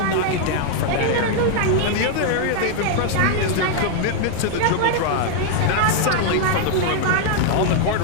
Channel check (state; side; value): different; both; correlation 0.00